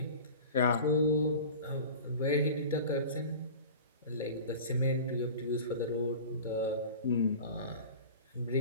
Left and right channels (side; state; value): both; inverted; correlation -0.37